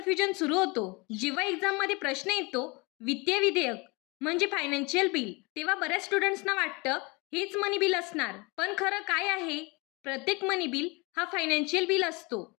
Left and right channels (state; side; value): quieter; right; 27.1 dB